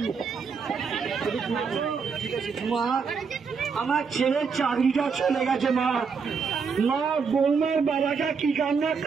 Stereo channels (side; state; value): left; quieter; 5.6 dB